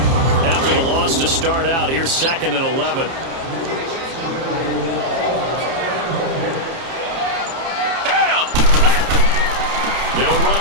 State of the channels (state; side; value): late; left; 30 ms